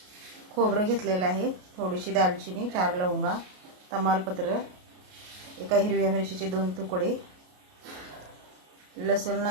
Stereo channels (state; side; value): late; left; 33 ms